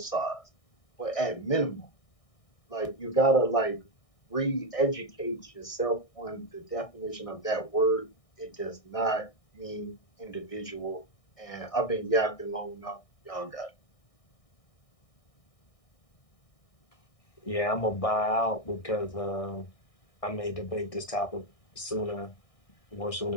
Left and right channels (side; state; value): right; late; 1.6 ms